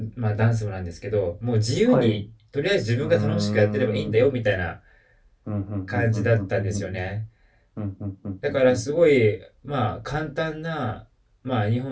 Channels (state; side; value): identical; both; correlation 1.00